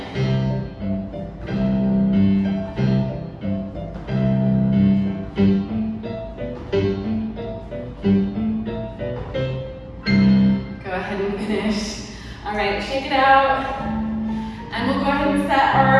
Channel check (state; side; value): identical; both; correlation 1.00